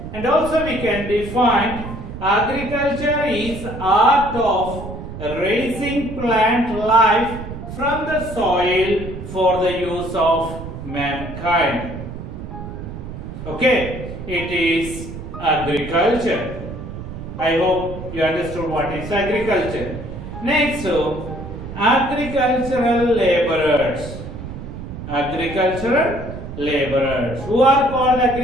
And also we can define agriculture is art of raising plant life from the soil for the use of mankind. Okay, it is agriculture. I hope you understood what is agriculture. Next, agricultural laborers. Agricultural laborers. Who are called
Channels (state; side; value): noise; right; rumble, 10 dB below the sound